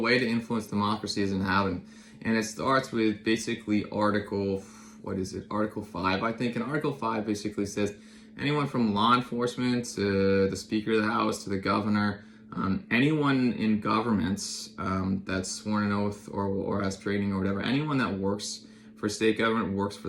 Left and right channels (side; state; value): both; identical; correlation 1.00